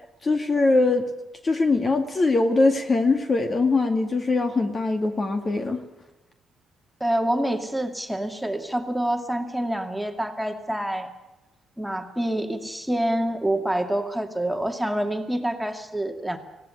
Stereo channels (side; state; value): both; normal; correlation 0.90